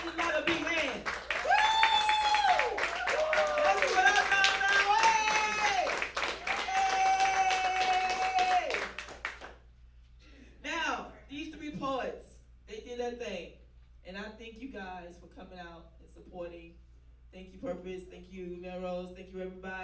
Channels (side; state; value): both; identical; correlation 1.00